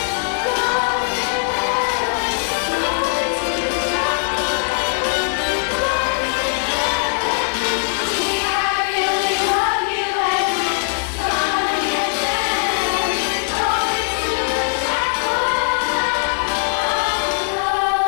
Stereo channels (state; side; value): silent; right; digital silence